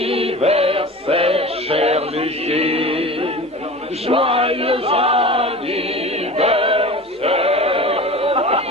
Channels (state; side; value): normal; both; correlation 0.35